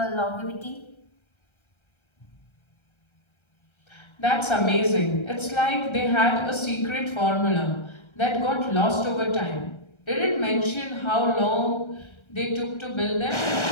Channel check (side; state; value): right; late; 1.3 ms